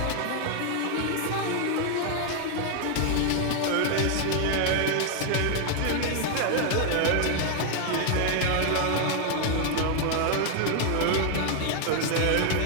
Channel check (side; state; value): both; different; correlation 0.00